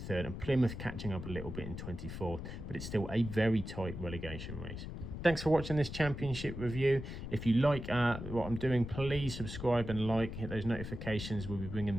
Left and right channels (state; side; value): noise; left; rumble, 8 dB below the sound